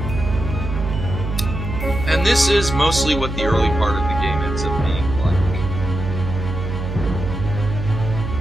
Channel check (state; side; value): noise; right; hum, 5 dB below the sound